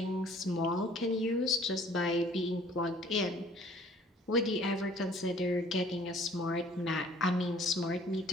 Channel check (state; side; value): normal; both; correlation 0.54